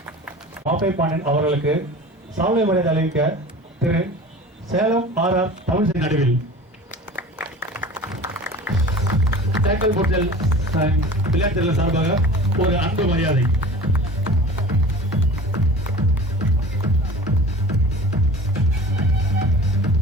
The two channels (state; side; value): normal; both; correlation 0.40